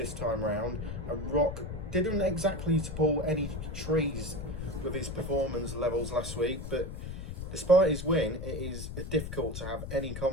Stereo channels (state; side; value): noise; left; rumble, 7 dB below the sound